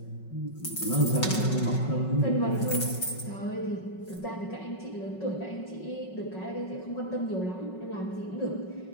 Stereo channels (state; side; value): late; right; 5.4 ms